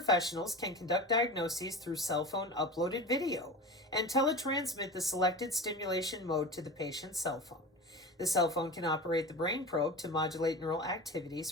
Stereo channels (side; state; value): both; normal; correlation 0.30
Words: can conduct diagnoses through cell phone uploaded video and teletransmit the selected stimulation mode to the patient's cell phone. The cell phone can operate the brain probe to modulate neural activities